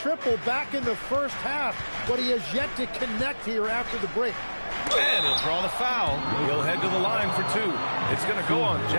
back in the first half, but he has yet to connect here after the break. And he'll draw the foul. He'll head to the line for 2. It's going to go on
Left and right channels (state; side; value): inverted; both; correlation -1.00